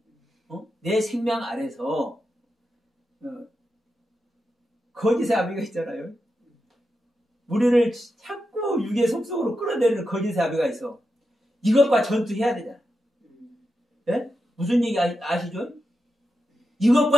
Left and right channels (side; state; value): both; normal; correlation 0.88